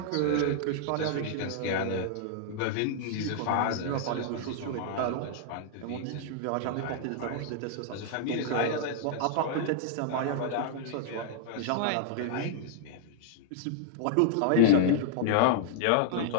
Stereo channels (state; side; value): different; both; correlation -0.01